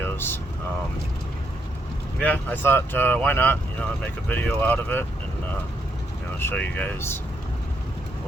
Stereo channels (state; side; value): normal; both; correlation 0.76